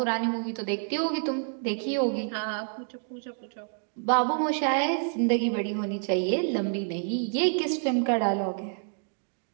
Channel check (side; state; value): left; silent; digital silence